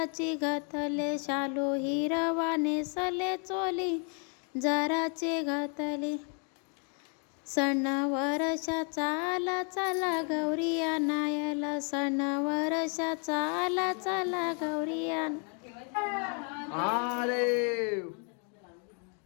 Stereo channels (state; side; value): quieter; right; 40.0 dB